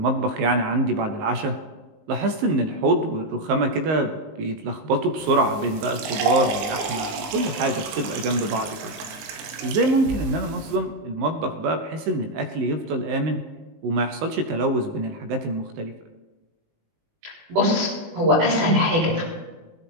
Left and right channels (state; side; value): late; left; 19 ms